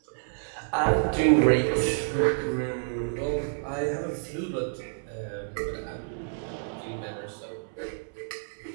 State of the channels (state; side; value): silent; left; 59 dB below the other